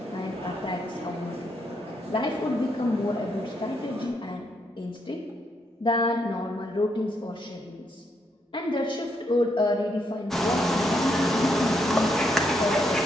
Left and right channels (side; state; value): both; normal; correlation 0.77